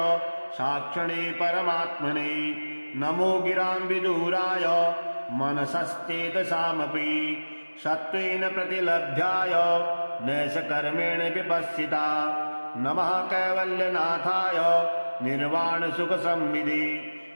साक्षिणे परमात्मने नमो गिरां विदूराय मनसश्चेतसामपि सत्त्वेन प्रतिलभ्याय नैषकर्मेण विपश्चिता नमः कैवल्यनाथाय निर्वाणसुखसंविदे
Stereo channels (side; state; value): both; inverted; correlation -1.00